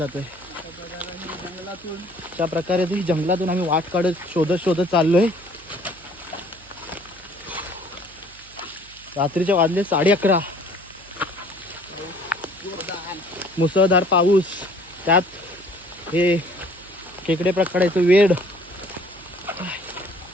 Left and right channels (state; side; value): noise; right; hum, 25 dB below the sound